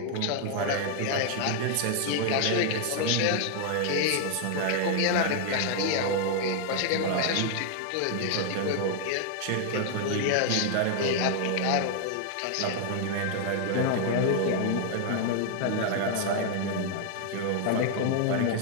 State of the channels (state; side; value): different; both; correlation 0.00